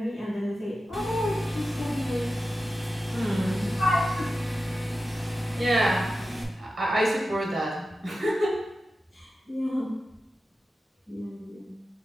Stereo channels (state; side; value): normal; both; correlation 0.93